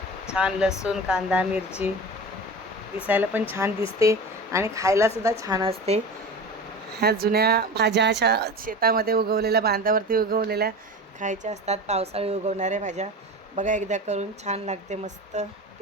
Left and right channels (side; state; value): both; normal; correlation 0.31